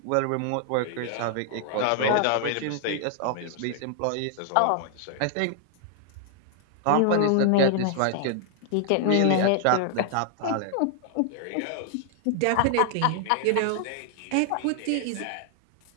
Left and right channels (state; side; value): different; both; correlation 0.00